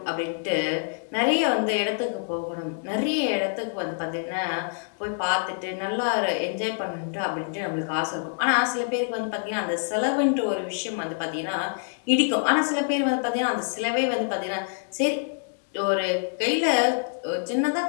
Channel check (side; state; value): right; silent; 61 dB below the other